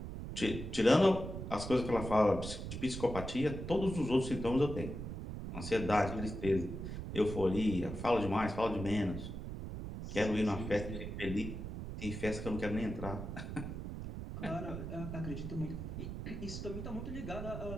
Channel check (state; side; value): noise; right; rumble, 7 dB below the sound